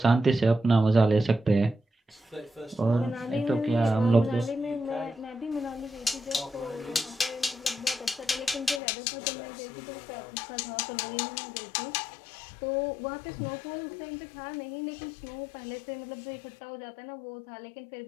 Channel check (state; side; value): drops out; right; at 8.8 s